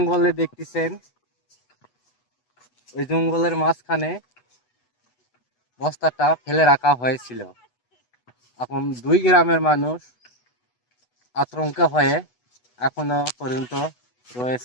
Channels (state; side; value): late; right; 8.1 ms